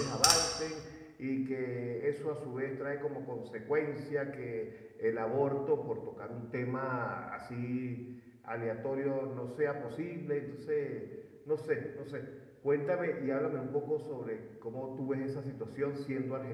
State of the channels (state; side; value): identical; both; correlation 1.00